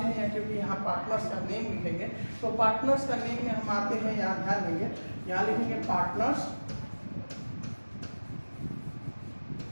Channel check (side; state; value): both; inverted; correlation -1.00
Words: क्योंकि यहाँ पार्टनर्स का नेम लिखेंगे, तो पार्टनर्स का नेम में हम आते हैं, यहाँ ध्यान देंगे, यहाँ लिखेंगे पार्टनर्स,